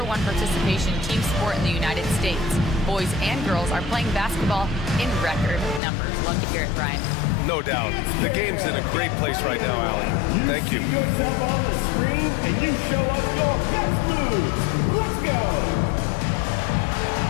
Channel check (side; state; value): right; drops out; at 5.8 s